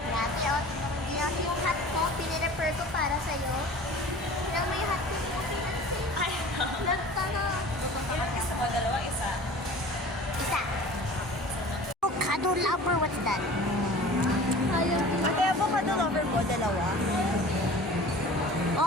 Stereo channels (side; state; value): both; normal; correlation 0.42